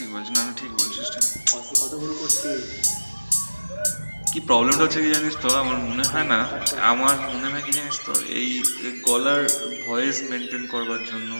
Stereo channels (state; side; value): inverted; both; correlation -1.00